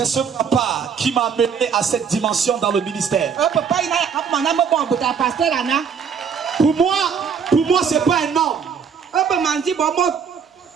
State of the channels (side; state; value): left; quieter; 6.6 dB